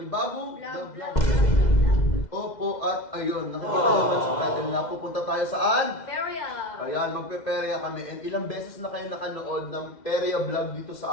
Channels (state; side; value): late; right; 2.1 ms